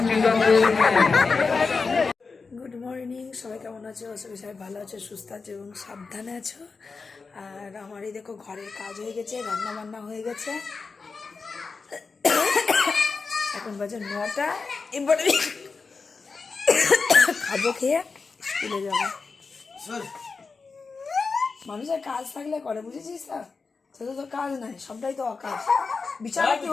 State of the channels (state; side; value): quieter; right; 4.5 dB